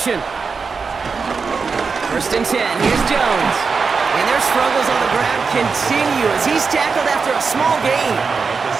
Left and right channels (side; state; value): left; quieter; 5.0 dB